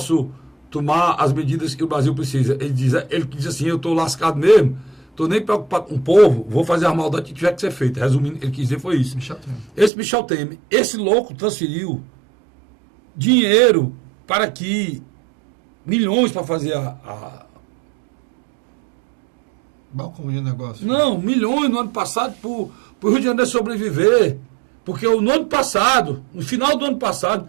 tomar as medidas que o Brasil precisa. Ele diz assim, eu estou lascado mesmo, estou nem preocupado com o povo, vou fazer a maldade que tiver que ser feita. Resumindo, ele quis dizer foi isso. Esse Michel Temer, esse louco transferiu dinheiro para que milhões para fazer balcão de negócio. Não, milhões no ano passado para o Rio de Janeiro sobreviver. Porque no ano passado, no final do ano passado,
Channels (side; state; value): left; drops out; at 9.9 s